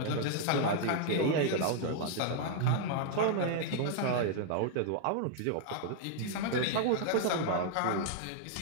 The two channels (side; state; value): both; different; correlation 0.00